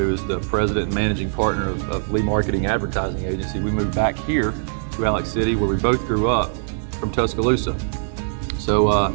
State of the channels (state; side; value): silent; left; digital silence